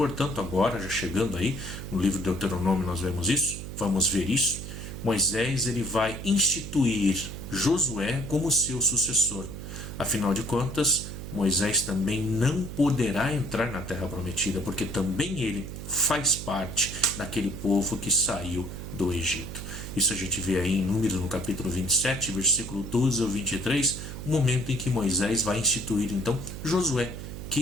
agora já chegando aí, no livro de Deuteronômio nós vemos isso, vamos ver isso. Moisés ele vai instituir Josué como seu sucessor. Afinal de contas, Moisés também não poderá entrar na terra prometida, porque também ele faz parte daquele povo que saiu do Egito. Isso a gente vê aí em Números, no capítulo 27, versículo 12 ao 23, o momento em que Moisés vai instituir então Josué,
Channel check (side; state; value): right; noise; hum, 9 dB below the sound